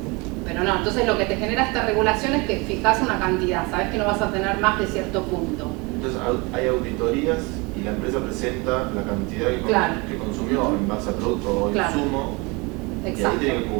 no, entonces lo que te genera esta regulación es que fijas una cantidad, sabes que no vas a tener más de cierto punto. Entonces hay auditorías y la empresa presenta la cantidad que consumió en base a producto o insumo, y ahí tiene que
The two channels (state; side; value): quieter; left; 27.0 dB